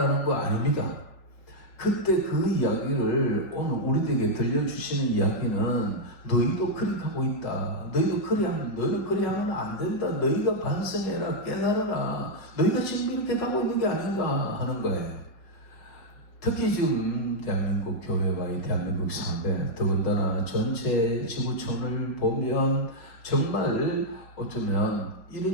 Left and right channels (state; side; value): late; right; 5.0 ms